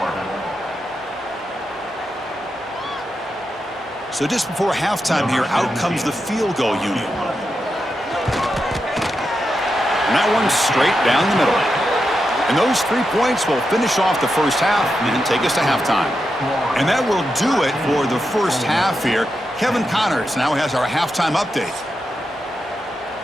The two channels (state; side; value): normal; both; correlation 0.87